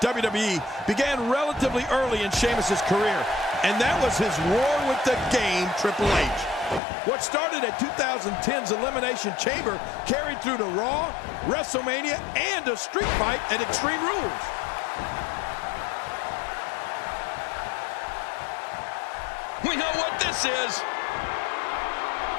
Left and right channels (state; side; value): drops out; right; at 6.8 s